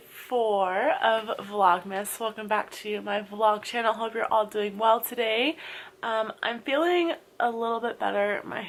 4 of Vlogmas. Welcome back to my vlog channel. Hope you're all doing well today. I'm feeling a little bit better. My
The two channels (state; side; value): identical; both; correlation 1.00